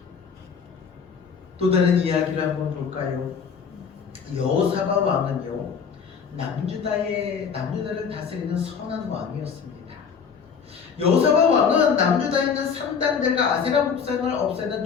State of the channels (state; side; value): quieter; right; 6.4 dB